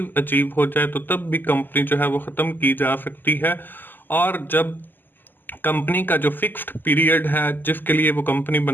अचीव हो जाए तो तब भी कंपनी जो है वो ख़त्म की जा सकती है। और जब कंपनी का जो फिक्स्ड पीरियड है जिसके लिए वो कंपनी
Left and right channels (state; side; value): late; right; 0.090 ms